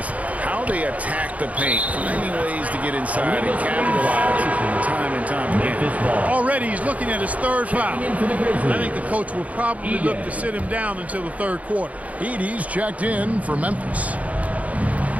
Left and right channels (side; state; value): left; late; 0.069 ms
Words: how they attack the paint, finding ways to get inside and capitalize time and time again. Already he's looking at his 3rd foul. I think the coach will probably look to sit him down until the 3rd quarter. Edey's checked in for Memphis.